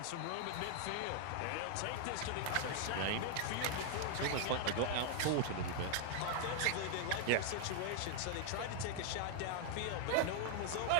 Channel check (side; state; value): both; different; correlation 0.00